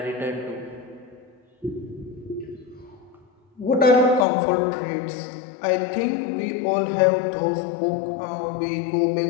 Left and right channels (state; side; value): drops out; right; at 4.2 s